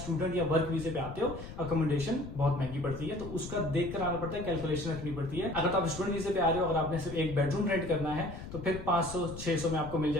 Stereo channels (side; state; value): left; noise; rumble, 11 dB below the sound